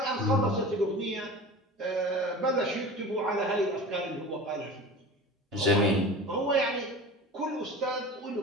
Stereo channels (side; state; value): both; normal; correlation 0.35